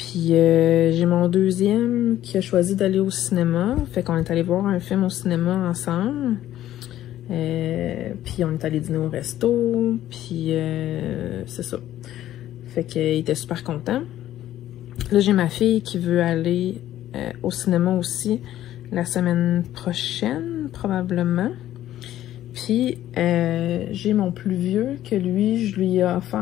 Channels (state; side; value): quieter; right; 13.0 dB